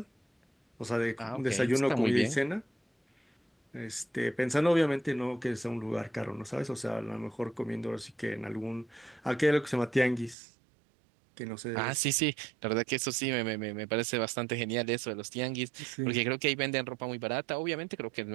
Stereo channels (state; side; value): drops out; left; at 10.4 s